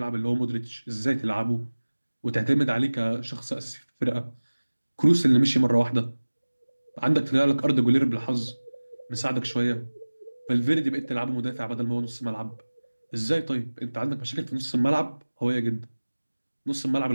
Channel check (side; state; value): both; inverted; correlation -1.00